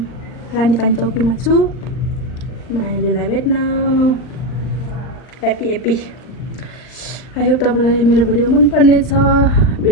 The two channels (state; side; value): late; right; 39 ms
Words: रानीपानी चौकीमा छु, मायालुलाई भेट्न। Happy happy. आई होप तपाईँलाई मेरो भिडियो मनपर्ने छ।